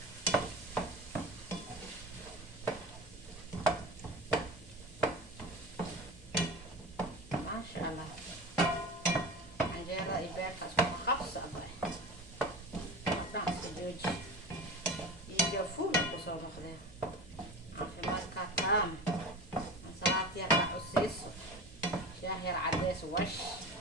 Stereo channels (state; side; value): normal; both; correlation 0.32